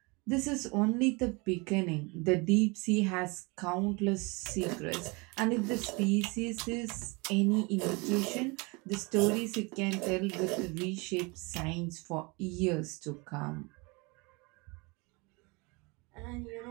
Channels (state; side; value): quieter; left; 27.9 dB